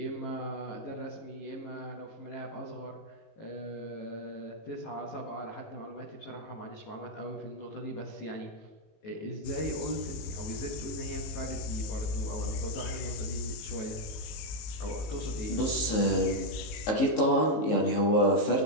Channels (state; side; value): late; right; 19 ms